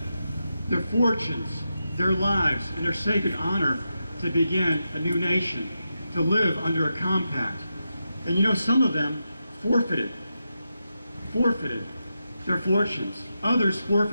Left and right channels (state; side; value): inverted; both; correlation -0.88